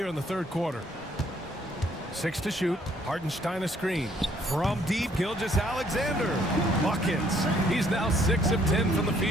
in the third quarter. 6 to shoot. Hartenstein a screen. From deep, Gilgeous-Alexander. Buckets. He's now 6 of 10 from the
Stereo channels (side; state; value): both; normal; correlation 0.65